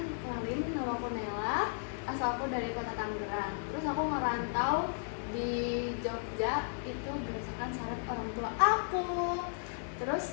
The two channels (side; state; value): right; silent; digital silence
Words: kenalin nama aku Nela. Asalku dari kota Tangerang. Terus aku ngerantau di Jogja itu berdasarkan syarat orang tua aku.